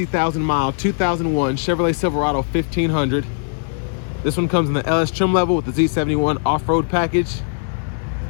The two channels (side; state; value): right; silent; digital silence